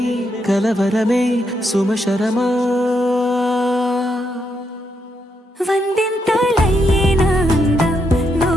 కలవరమే సుమశరమా వందింతలయ్యే నా అందం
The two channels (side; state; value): both; normal; correlation 0.79